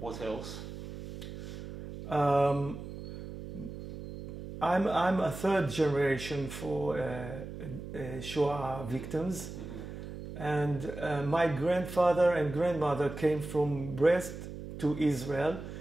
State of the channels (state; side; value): noise; right; hum, 10 dB below the sound